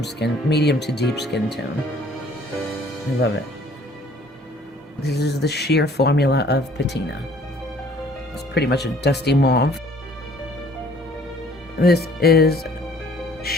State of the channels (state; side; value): normal; both; correlation 0.56